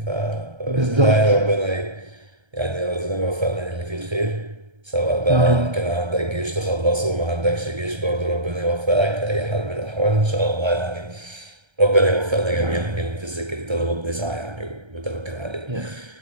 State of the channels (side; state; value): left; late; 1.3 ms